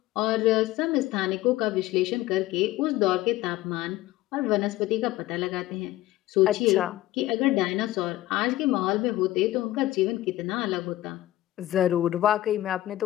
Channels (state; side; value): quieter; right; 15.8 dB